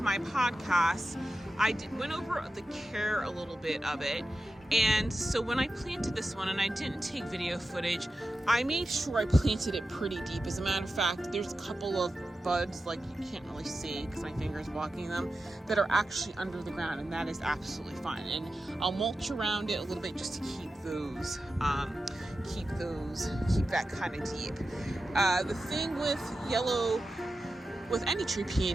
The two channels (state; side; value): normal; both; correlation 0.92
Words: my podcast, went over the care a little bit of it. And so when I planted this one, and I didn't take video footage, I made sure I planted it pretty deep. As a matter of fact, there's a couple of buds, like you can't really see because my finger's blocking them, that are actually under the ground, and that is absolutely fine. And I'll mulch around it a little bit just to keep that kind of deep. The thing with any tree